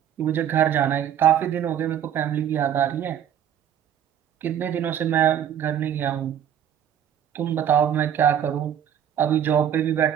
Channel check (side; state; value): left; quieter; 9.6 dB